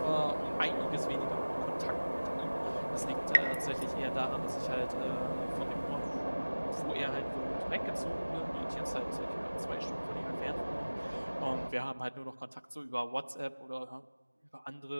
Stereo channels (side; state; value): both; inverted; correlation -1.00